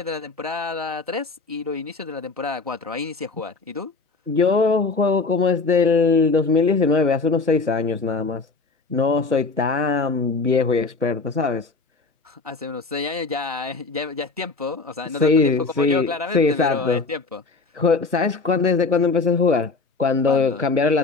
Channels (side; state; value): right; quieter; 4.0 dB